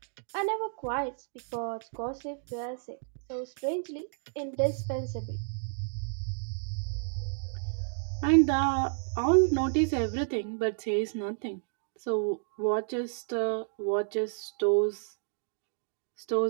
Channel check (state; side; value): silent; left; digital silence